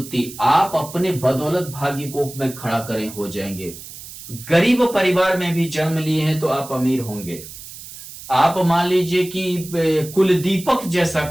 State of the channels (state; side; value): noise; right; hiss, 14 dB below the sound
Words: आप अपने बदौलत भाग्य को में खड़ा करें, हो जाएंगे। गरीब परिवार में भी जन्म लिए हैं तो आप अमीर होंगे। आप मान लीजिए कि कुल दीपक जैसा